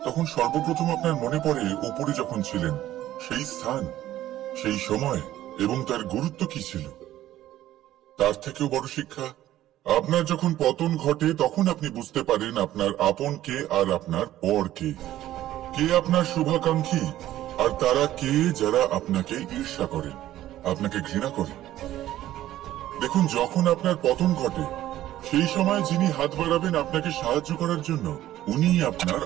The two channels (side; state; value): left; quieter; 13.6 dB